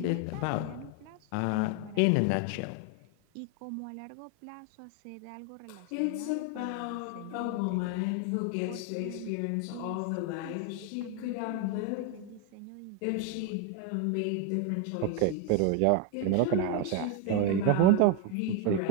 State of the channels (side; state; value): both; different; correlation 0.01